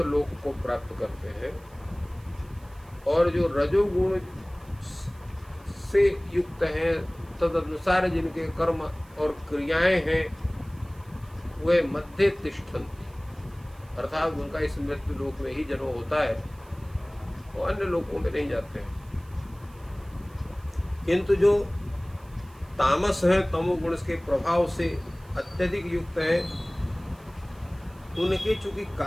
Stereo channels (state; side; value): noise; right; hiss, 28 dB below the sound